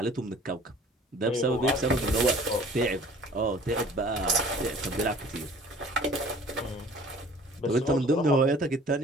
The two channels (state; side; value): normal; both; correlation 0.50